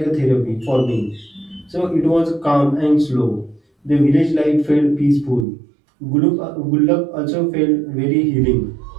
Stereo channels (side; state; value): left; drops out; at 5.5 s